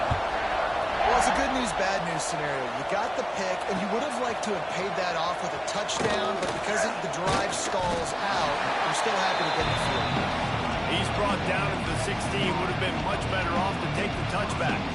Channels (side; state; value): both; identical; correlation 1.00